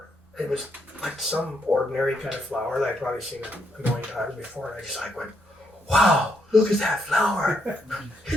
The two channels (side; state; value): both; normal; correlation 0.76